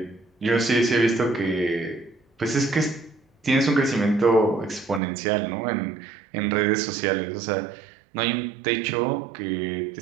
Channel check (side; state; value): left; drops out; at 5.0 s